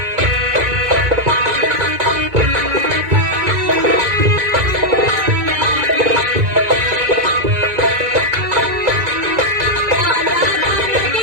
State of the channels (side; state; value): left; late; 2.2 ms